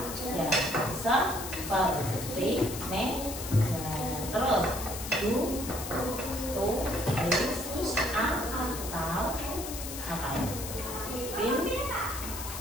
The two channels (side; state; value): left; noise; hiss, 8 dB below the sound